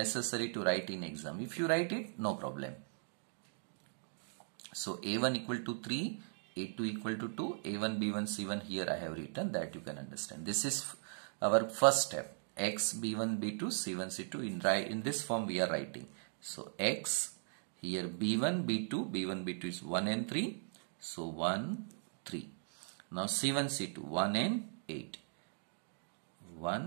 to write in exam. If you write it, no problem. So A1 equal to 3, A2 equal to 2, A1, B1, C1 here I have written, that you can understand. This is our first step. X, B1, B2, C1, C2 in this form we are writing. So X, here B1, B2, B1, B2 is 1 and 3. So 1, 3. Now C1, C2, 1 and 8.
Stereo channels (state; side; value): silent; left; digital silence